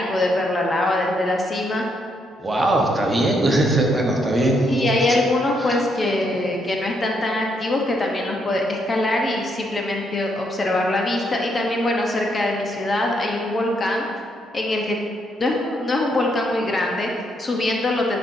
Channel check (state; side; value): normal; both; correlation 0.76